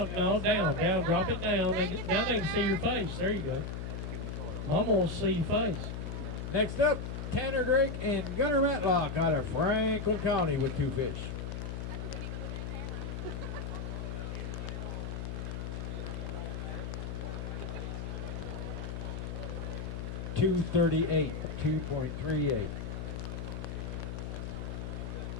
No, down, drop it down. Now they can see your face. There you go. Mama wants to see your face. Next up, Tanner Drake and Gunnar Matlock out of Franklin County with 2 fish. 238, 2.38. Where'd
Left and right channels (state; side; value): noise; left; hum, 5 dB below the sound